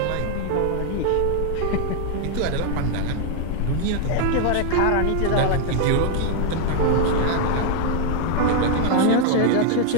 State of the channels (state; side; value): different; both; correlation 0.00